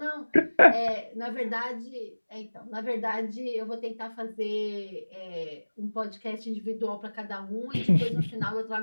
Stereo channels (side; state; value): both; inverted; correlation -1.00